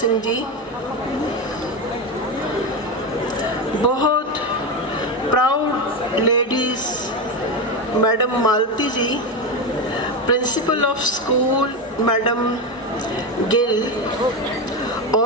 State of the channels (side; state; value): both; normal; correlation 0.15